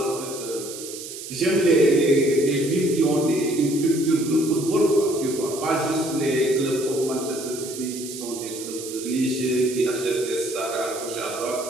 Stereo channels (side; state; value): right; noise; hiss, 11 dB below the sound